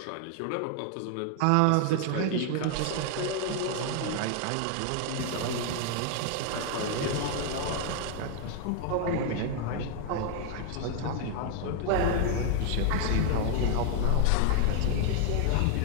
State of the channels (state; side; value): different; both; correlation 0.00